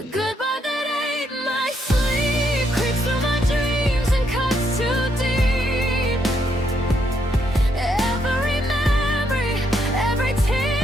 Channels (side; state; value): both; normal; correlation 0.76